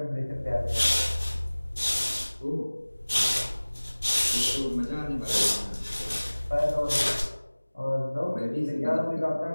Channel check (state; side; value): inverted; both; correlation -1.00